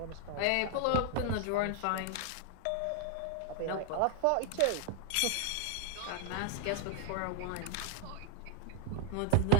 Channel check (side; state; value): both; different; correlation 0.00